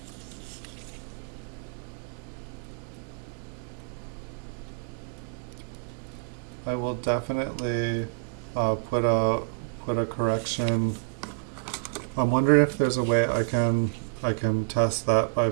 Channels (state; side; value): quieter; left; 35.2 dB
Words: I will definitely put a correction. I'm wondering if there's a way I can test that by